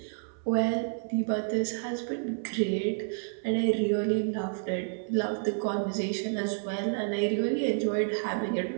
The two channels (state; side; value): silent; left; 56 dB below the other